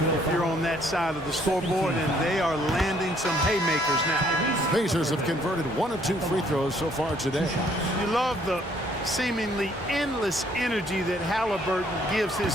if you're on that side of the scoreboard, and they are landing some haymakers now. Pacers have converted 1 of 2 free throws so far today. You love the seemingly endless energy that Halliburton gives his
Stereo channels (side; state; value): both; normal; correlation 0.64